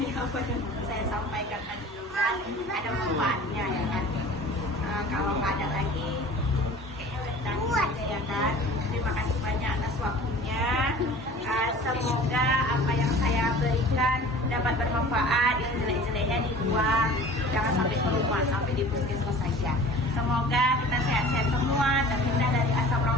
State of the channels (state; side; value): normal; both; correlation 0.43